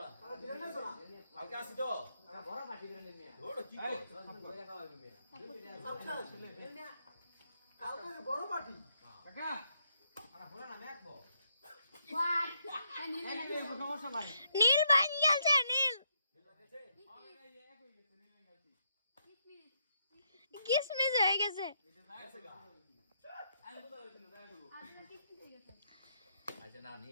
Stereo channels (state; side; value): inverted; both; correlation -0.76